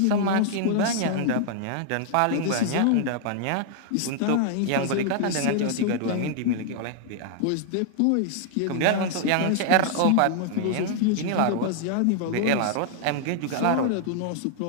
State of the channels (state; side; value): different; both; correlation 0.00